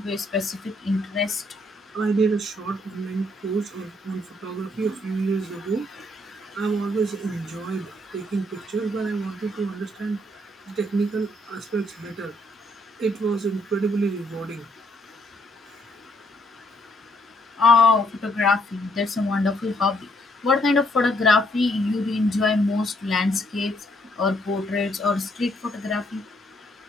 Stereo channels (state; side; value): normal; both; correlation 0.71